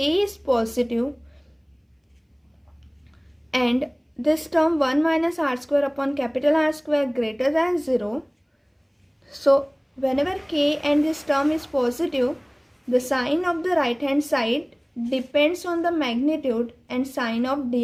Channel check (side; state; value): both; identical; correlation 1.00